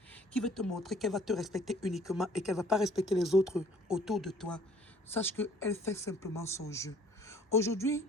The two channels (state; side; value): normal; both; correlation 0.56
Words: qui veut te montrer qu'elle va te respecter uniquement et qu'elle ne va pas respecter les autres autour de toi, sache qu'elle fait simplement son jeu. Aujourd'hui,